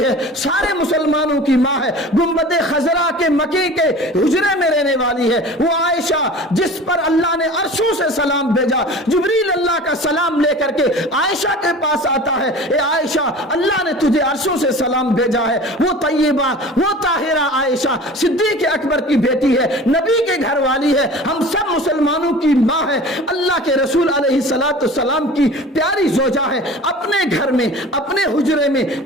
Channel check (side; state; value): both; normal; correlation 0.40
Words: ہے, سارے مسلمانوں کی ماں ہے, گنبد خضرا کے مکی کے حجرے میں رہنے والی ہے. وہ عائشہ جس پر اللہ نے عرشوں سے سلام بھیجا, جبریل اللہ کا سلام لے کر کے عائشہ کے پاس آتا ہے, اے عائشہ اللہ نے تجھے عرشوں سے سلام بھیجا ہے. وہ طیبہ, وہ طاہرہ عائشہ صدیق اکبر کی بیٹی ہے, نبی کے گھر والی ہے, ہم سب مسلمانوں کی ماں ہے, اللہ کے رسول علیہ السلام کی پیاری زوجہ ہے. اپنے گھر میں, اپنے حجرے میں,